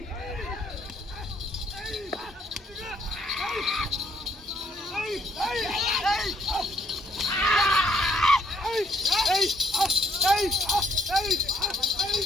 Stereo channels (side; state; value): both; normal; correlation 0.68